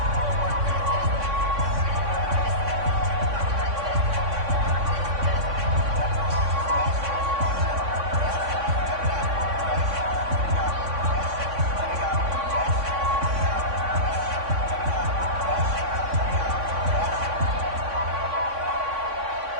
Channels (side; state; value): left; late; 3.6 ms